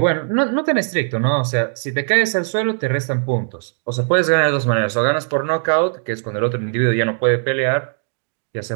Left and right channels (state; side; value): silent; left; digital silence